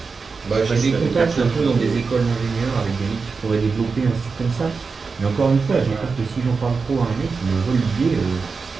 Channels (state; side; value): quieter; left; 4.7 dB